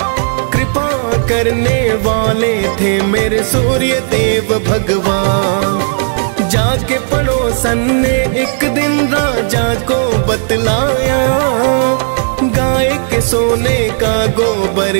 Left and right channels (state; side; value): silent; left; digital silence